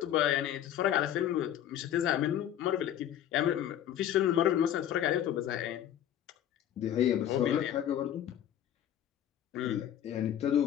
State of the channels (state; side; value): quieter; right; 10.9 dB